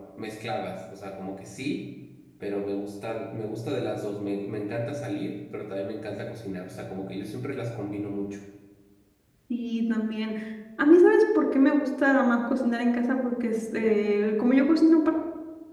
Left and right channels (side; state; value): both; identical; correlation 1.00